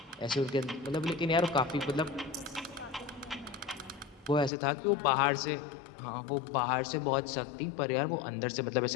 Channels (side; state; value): right; drops out; at 4.5 s